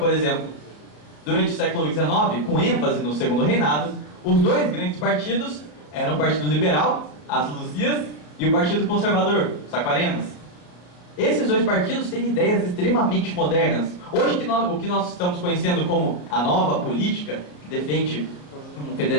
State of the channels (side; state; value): right; late; 34 ms